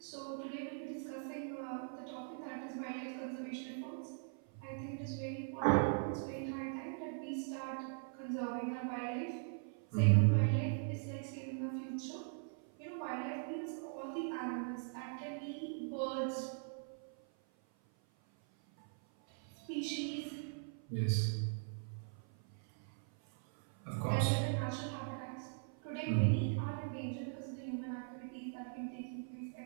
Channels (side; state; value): left; silent; 51 dB below the other